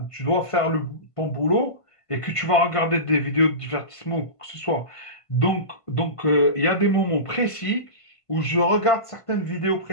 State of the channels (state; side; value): late; right; 1.5 ms